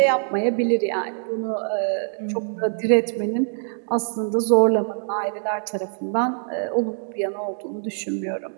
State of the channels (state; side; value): silent; left; digital silence